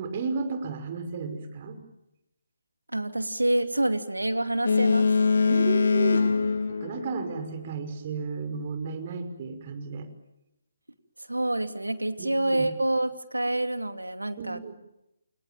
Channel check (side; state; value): both; inverted; correlation -0.89